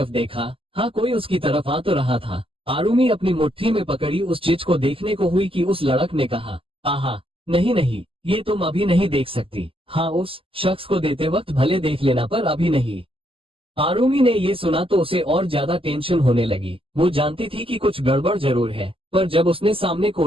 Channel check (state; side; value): late; left; 0.26 ms